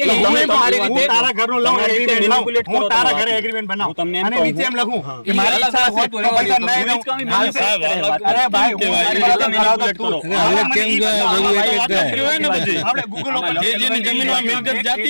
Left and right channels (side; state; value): both; inverted; correlation -1.00